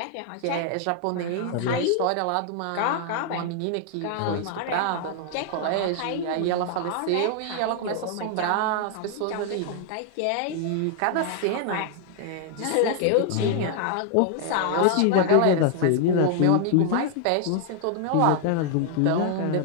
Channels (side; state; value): both; different; correlation 0.00